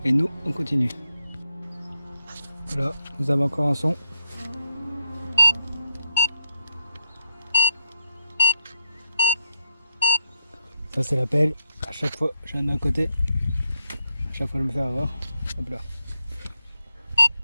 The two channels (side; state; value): both; inverted; correlation -0.80